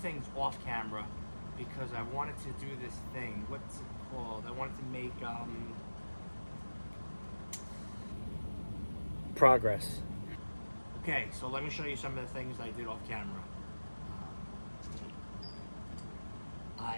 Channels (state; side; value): inverted; both; correlation -1.00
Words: off camera because I wanted to do this thing. What's it called? I wanted to make progress. Okay, so let me show you some of the things I did off camera.